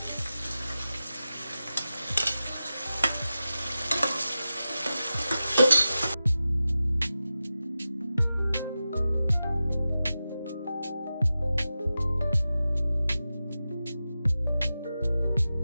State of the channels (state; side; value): inverted; both; correlation -0.93